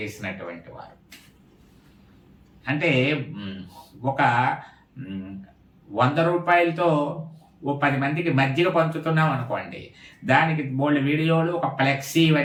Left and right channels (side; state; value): both; identical; correlation 1.00